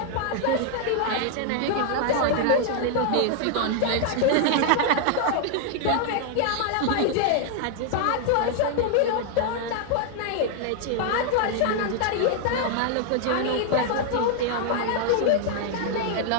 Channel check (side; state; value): both; different; correlation 0.00